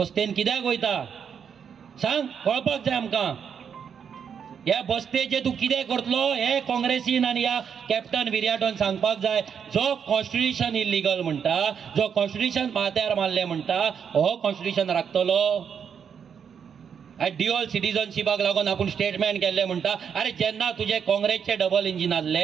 कित्याक वयता सांग कळपाक जाय आमकां ह्या बसतेचे तूं कितें करतलो हे काँग्रेसीन आनी ह्या कॅप्टन विर्याटोन सांगपाक जाय जो कॉन्स्टिट्युशन इल्लिगल म्हणटा जो कॉन्स्टिट्युशन माथ्यार मारले म्हणटा हो कॉन्स्टिट्युशन राखतलो ड्युअल सिटीजनशिपाक लागून आपूण स्टेटमेंट केल्ले म्हणटा अरे जेन्ना तुजे काँग्रेसचे डबल इंजीन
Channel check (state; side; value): quieter; left; 7.3 dB